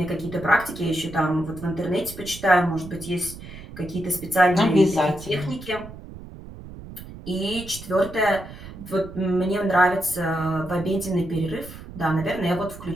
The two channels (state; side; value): noise; right; rumble, 14 dB below the sound